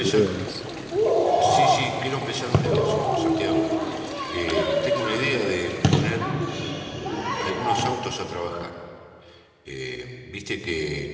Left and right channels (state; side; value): identical; both; correlation 1.00